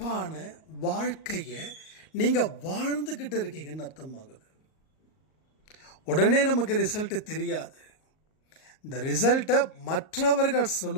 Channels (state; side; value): late; right; 38 ms